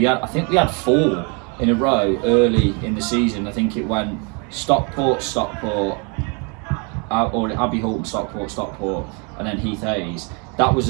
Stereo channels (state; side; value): quieter; left; 34.6 dB